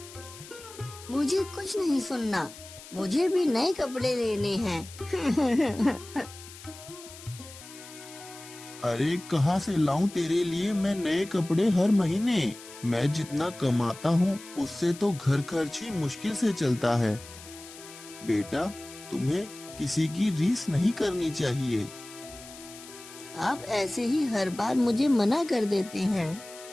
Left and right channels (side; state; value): left; noise; hiss, 17 dB below the sound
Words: मुझे कुछ नहीं सुनना, मुझे भी नए कपड़े लेने हैं। अरे कहाँ से लाऊं तेरे लिए मैं नए कपड़े हर महीने? मैं जितना कमाता हूँ उससे तो घर खर्च ही मुश्किल से चलता है। बेटा तुम्हें किसी की रीस नहीं करनी चाहिए। आप ऐसे ही हर बार मुझे मना कर देते हैं।